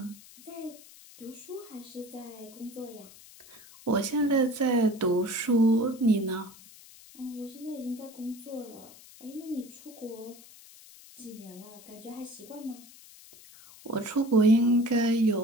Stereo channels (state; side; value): noise; left; hiss, 21 dB below the sound